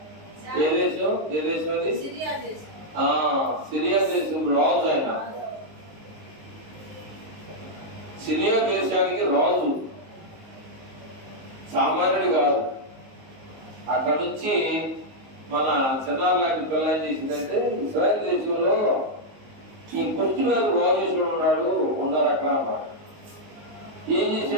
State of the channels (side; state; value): left; late; 19 ms